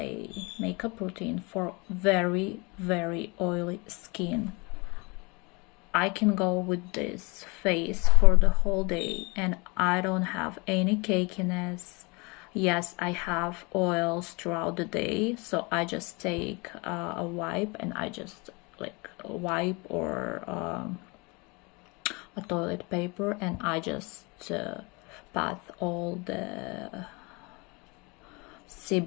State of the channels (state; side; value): quieter; right; 28.1 dB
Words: makeup routine for very, very oily skin. I can go with this face for the whole day and I don't have any cakiness. Yes, I have oils throughout the day, so I just take a wipe and I just like wipe or a toilet paper, and I just pat all the